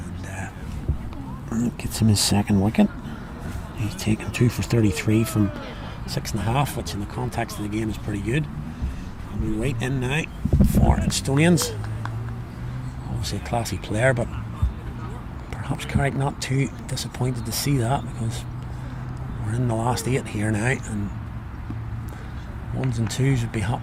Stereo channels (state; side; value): identical; both; correlation 1.00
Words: And gets him his second wicket. He's taken 2 for 33 from 6.5, which in the context of the game is pretty good. And we wait in now for Instonians. Obviously a classy player, but perhaps Carrick not too disappointed to see that, because we're in the last 8 here now, and 1s and 2s would be